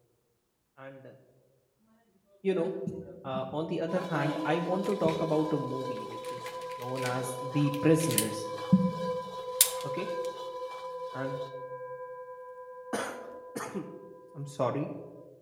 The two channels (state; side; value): identical; both; correlation 1.00